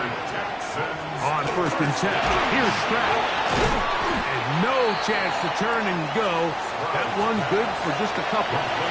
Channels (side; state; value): both; identical; correlation 1.00